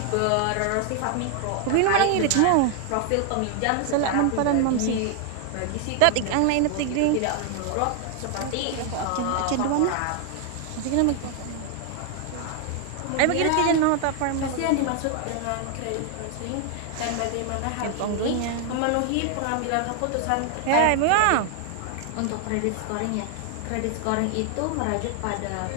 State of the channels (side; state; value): both; different; correlation 0.00